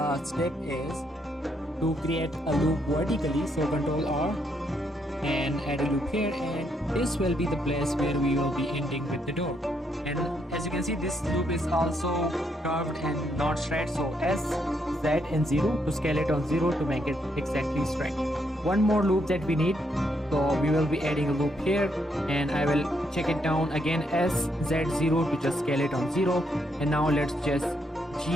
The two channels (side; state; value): both; normal; correlation 0.76